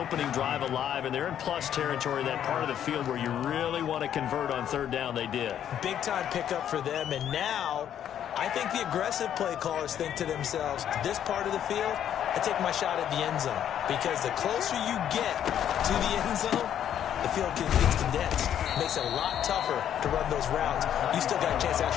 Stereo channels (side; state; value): right; quieter; 10.0 dB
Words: drive alive, and they're in plus territory, that part of the field where you really want to convert on 3rd down. They did. Big-time pickup for them, and now I think the aggressive play callers think to themselves, this part of the field, I take my shot at the end zone, because the closer you get to the end zone, the field gets condensed. Makes it a lot tougher to run those routes. You still got a chance to